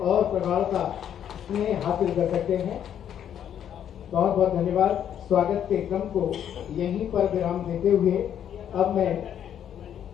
प्रगाढ़ता में हासिल कर सकते हैं। बहुत बहुत धन्यवाद। स्वागत के क्रम को यहीं पर विराम देते हुए अब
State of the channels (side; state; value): right; quieter; 9.6 dB